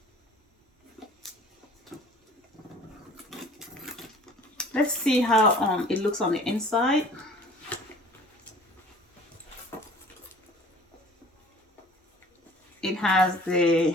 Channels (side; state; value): both; normal; correlation 0.48